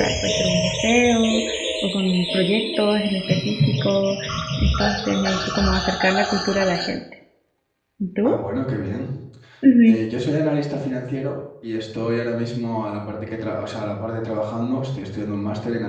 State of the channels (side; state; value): both; identical; correlation 1.00